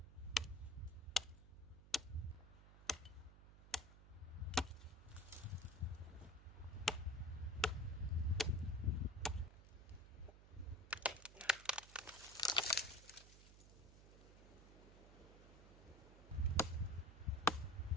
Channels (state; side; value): noise; right; hum, 18 dB below the sound